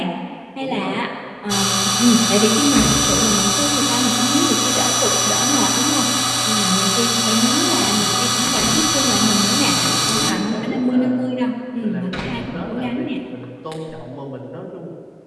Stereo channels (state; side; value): identical; both; correlation 1.00